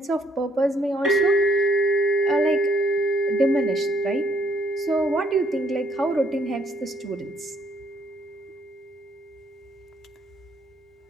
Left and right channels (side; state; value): both; normal; correlation 0.67